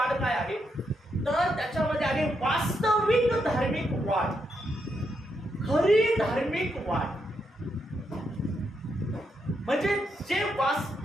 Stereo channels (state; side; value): normal; both; correlation 0.81